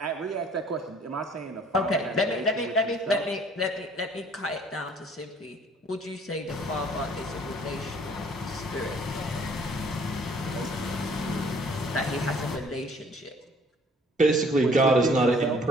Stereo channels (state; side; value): normal; both; correlation 0.57